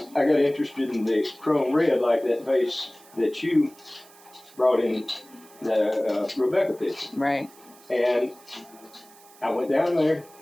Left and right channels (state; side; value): noise; right; hiss, 24 dB below the sound